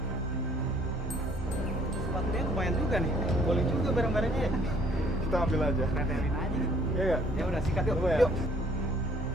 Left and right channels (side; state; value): both; normal; correlation 0.60